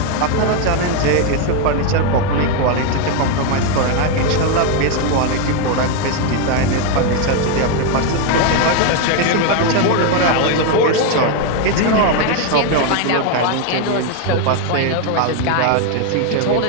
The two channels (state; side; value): different; both; correlation 0.01